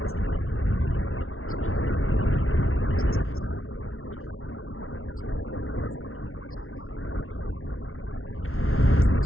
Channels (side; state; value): right; late; 0.62 ms